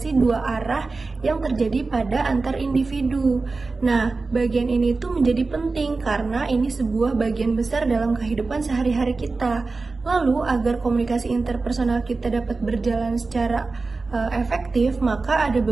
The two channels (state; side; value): quieter; left; 3.8 dB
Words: dua arah yang terjadi pada antar individu. Nah, bagian ini tuh menjadi penting karena ini sebuah bagian besar dalam kehidupan sehari-hari kita. Lalu, agar komunikasi interpersonal kita dapat berjalan secara efektif, maka ada